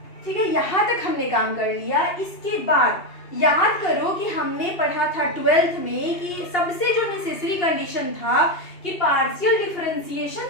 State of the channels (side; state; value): right; late; 2.8 ms